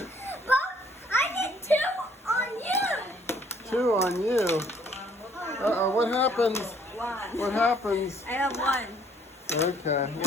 But I did 2 on you. 2 on you. Uh-oh, what happens? 1. What happens? I have 1. Okay,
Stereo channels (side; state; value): both; normal; correlation 0.62